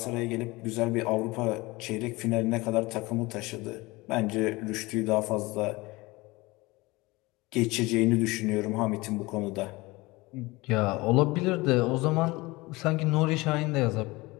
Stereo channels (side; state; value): right; quieter; 22.3 dB